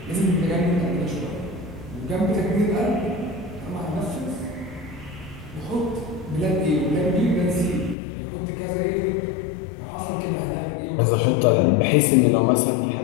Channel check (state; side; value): drops out; right; at 8.0 s